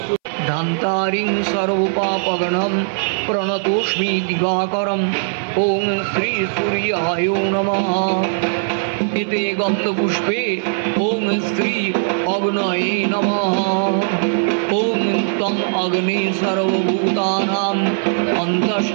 धान्तारिं सर्वपापगणं प्रणतोष्मि दिवाकरं ओम श्री सूर्याय नमः। इते गन्धपुष्पे ओम श्री अग्नये नमः। ओम तम अग्ने सर्वभूतानां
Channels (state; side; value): silent; left; 62 dB below the other